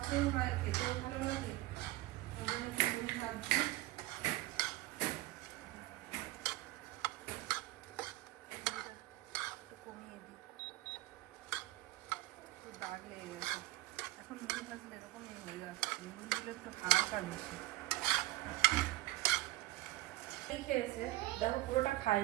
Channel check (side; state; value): left; quieter; 17.9 dB